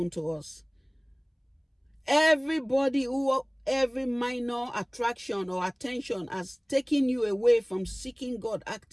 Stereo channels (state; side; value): identical; both; correlation 1.00